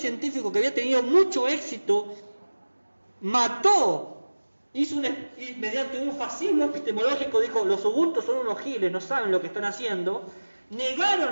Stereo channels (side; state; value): both; inverted; correlation -1.00